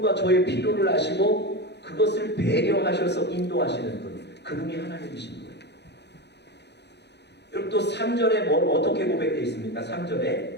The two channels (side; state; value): right; late; 0.50 ms